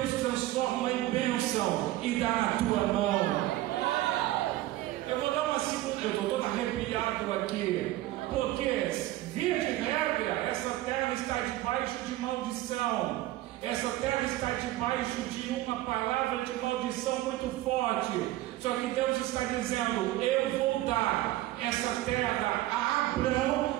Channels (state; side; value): quieter; left; 16.0 dB